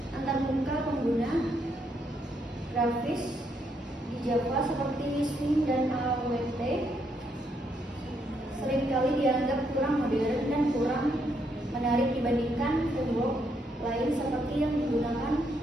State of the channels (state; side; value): normal; both; correlation 0.75